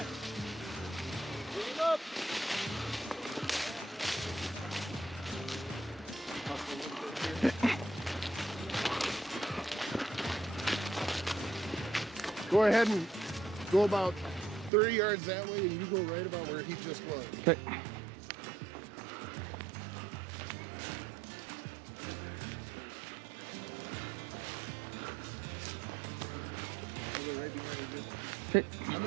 Go ahead and go about 30 yards that way and you go right about where he just was. Okay. Right behind you. Okay. I'm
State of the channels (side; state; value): left; drops out; at 14.7 s